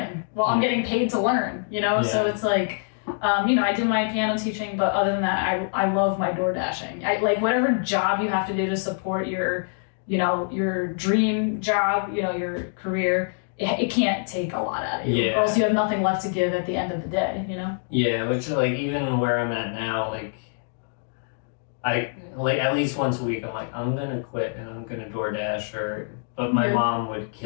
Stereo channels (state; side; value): silent; right; digital silence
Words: while I'm getting paid to learn, So it's like, I do my piano teaching, but other than that, I love my door dashing. I like whatever job you have to do to support your dream job, your career. It can't take a lot out of you, or else you have nothing left to give at the end of the day. Yeah, which like even where I'm at now, like I like at least once a week, I'm like, I'm gonna quit and I'm gonna DoorDash but my mom would